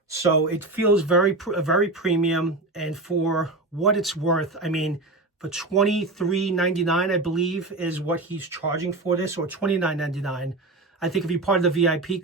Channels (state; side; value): quieter; left; 3.0 dB